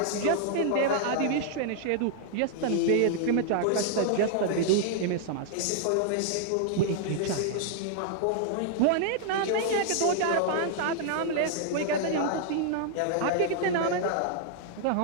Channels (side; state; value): both; different; correlation -0.01